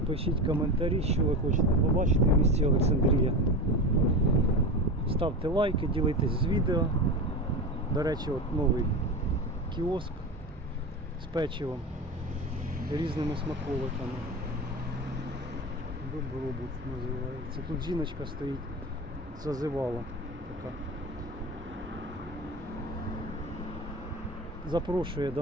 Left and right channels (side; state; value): both; normal; correlation 0.25